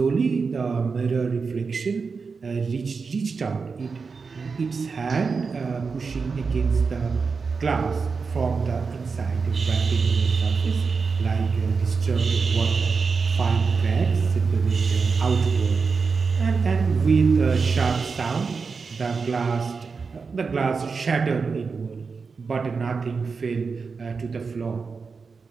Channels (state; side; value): quieter; left; 4.9 dB